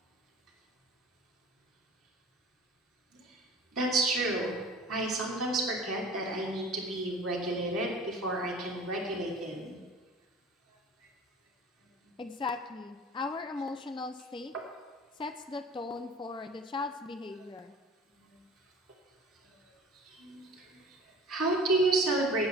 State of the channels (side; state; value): both; normal; correlation 0.43